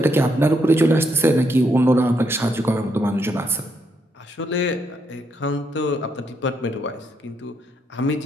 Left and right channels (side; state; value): both; normal; correlation 0.76